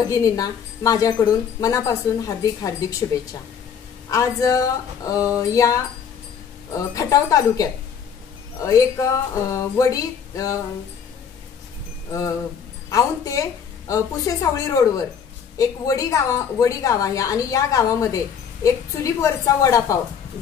माझ्याकडून मनापासून हार्दिक हार्दिक शुभेच्छा। आज या खटाव तालुक्यात एक वडी औंध ते पुसेसावळी रोडवर एक वडी गाव आहे आणि या गावामध्ये एक चुलीवरचा वडापाव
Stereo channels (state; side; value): quieter; right; 7.4 dB